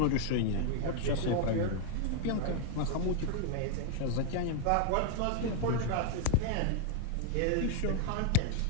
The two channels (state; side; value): different; both; correlation 0.00